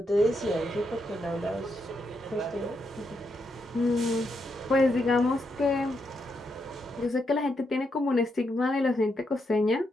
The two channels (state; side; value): normal; both; correlation 0.81